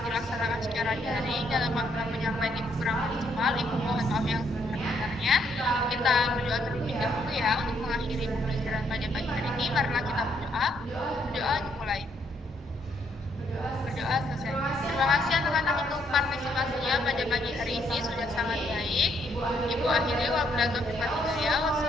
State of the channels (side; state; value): both; normal; correlation 0.72